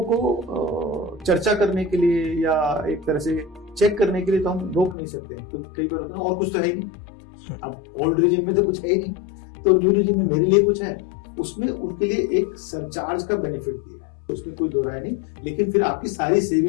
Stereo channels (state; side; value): drops out; right; at 5.0 s